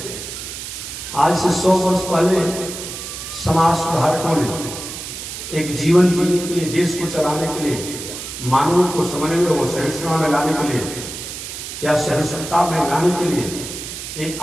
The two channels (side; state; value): right; noise; hiss, 9 dB below the sound